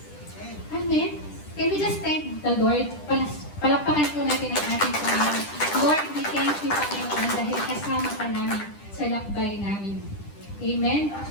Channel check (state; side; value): late; right; 10 ms